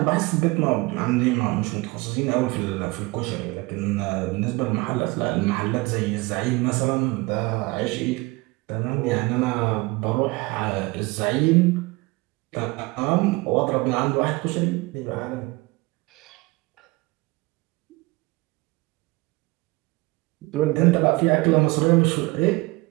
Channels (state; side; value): quieter; left; 23.7 dB